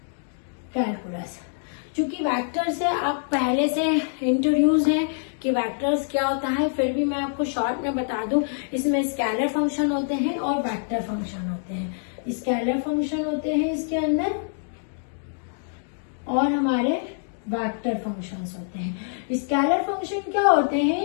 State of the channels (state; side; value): silent; right; digital silence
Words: कैलकुलस, चूंकि वेक्टर से आप पहले से इंट्रोड्यूस हैं कि वेक्टर्स क्या होता है, फिर भी मैं आपको शॉर्ट में बता दूं। इसमें स्केलर फंक्शन होते हैं और वेक्टर फंक्शन होते हैं। स्केलर फंक्शन होते हैं इसके अंदर और हमारे वेक्टर फंक्शंस होते हैं। स्केलर फंक्शन क्या होते